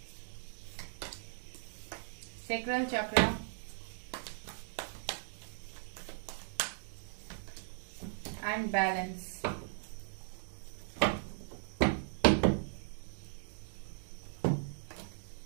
सैक्रल चक्र, एंड बैलेंस।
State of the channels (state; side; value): silent; left; digital silence